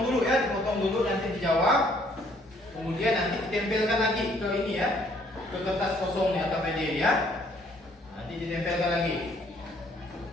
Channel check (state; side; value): normal; both; correlation 0.63